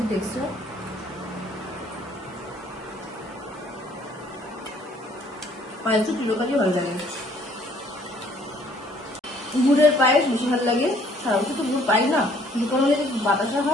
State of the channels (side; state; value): both; normal; correlation 0.60